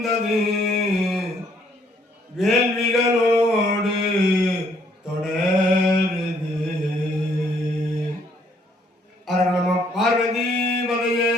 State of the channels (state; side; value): normal; both; correlation 0.67